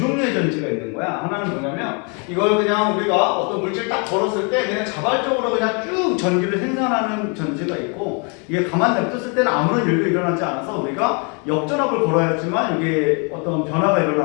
전지가 있는 거야. 하나는 뭐냐면 이걸 그냥 우리가 어떤 물질 딱 걸었을 때 그냥 자발적으로 그냥 쭉 전기를 생산하는 전지가 있고, 이게 가만 냅뒀을 때는 아무런 일도 일어나지 않아서 우리가 역전압을 걸어야지만 이게 어떤 변화가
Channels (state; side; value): quieter; right; 35.8 dB